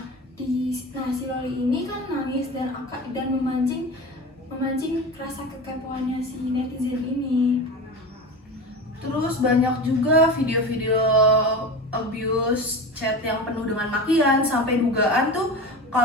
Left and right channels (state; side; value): normal; both; correlation 0.28